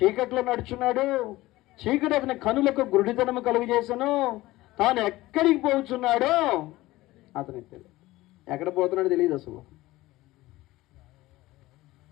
నడుచున్నాడు. చీకటి అతని కనులకు గురుడితనము కలుగజేసను. తాను ఎక్కడికి పోతున్నాడో అతనికి తెలియదు. ఎక్కడ పోతున్నాడో తెలియదు అసలు.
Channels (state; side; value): quieter; right; 18.1 dB